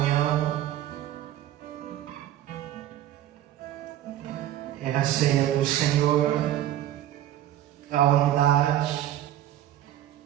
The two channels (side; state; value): left; quieter; 12.6 dB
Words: é a ceia do Senhor, a unidade,